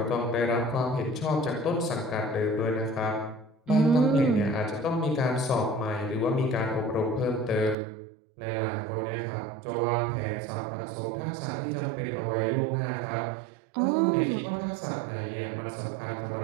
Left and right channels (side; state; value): left; drops out; at 7.8 s